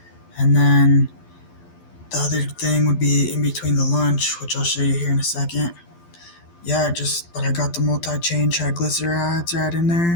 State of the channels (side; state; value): right; late; 12 ms